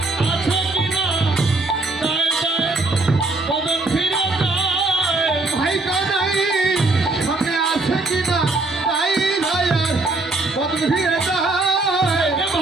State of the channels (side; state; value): left; quieter; 3.2 dB